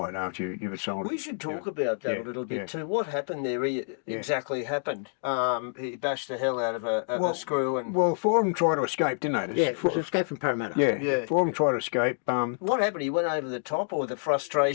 after you've assaulted. We should talk about that a little bit too. What happened there exactly happened? He bashed the hell out of a screw. Well, four of them tried to escape, didn't they? Escape from Parramatta. Yeah, four of them tried to escape. What happened? He went over the top, or the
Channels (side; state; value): right; silent; digital silence